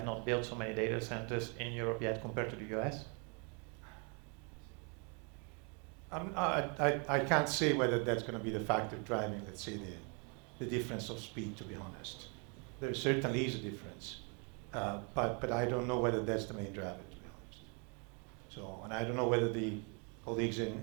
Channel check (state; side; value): quieter; left; 35.6 dB